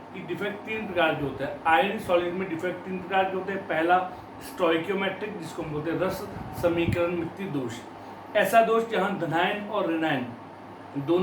कि डिफेक्ट तीन प्रकार के होते हैं। आयनिक सॉलिड में डिफेक्ट तीन प्रकार के होते हैं। पहला स्टोइकियोमेट्रिक, जिसको हम बोलते हैं रस समीकरण मिति दोष। ऐसा दोष जहां धनायन और ऋणायन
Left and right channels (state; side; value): identical; both; correlation 1.00